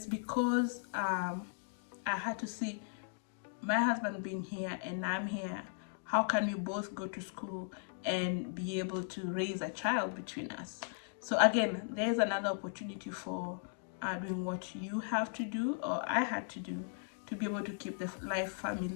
because I had to see my husband being here and I'm here. How can we both go to school and be able to raise a child between us? So again, there's another opportunity for doing what you have to do, or I had to do, to be able to keep the life,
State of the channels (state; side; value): silent; right; digital silence